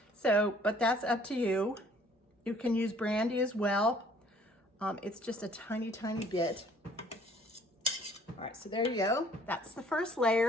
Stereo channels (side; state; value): both; normal; correlation 0.57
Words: So, but that's up to you. You can use brandy as well. It's just a tiny, tiny bit. All right, so there you go. That's the first